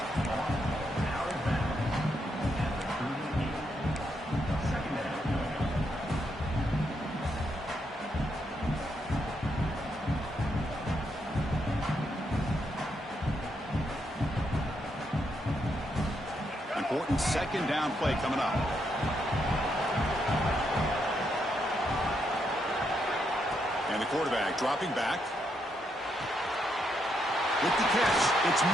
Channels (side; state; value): both; normal; correlation 0.79